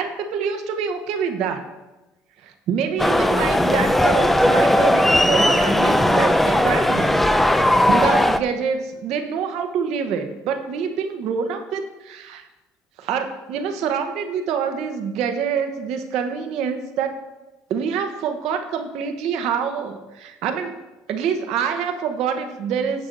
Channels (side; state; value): both; normal; correlation 0.76